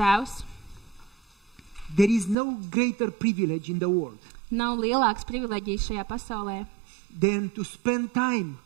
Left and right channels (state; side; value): drops out; left; at 2.4 s